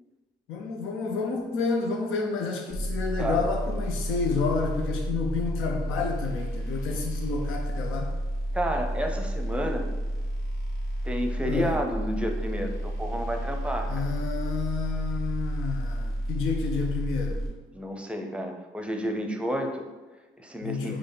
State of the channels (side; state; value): both; normal; correlation 0.70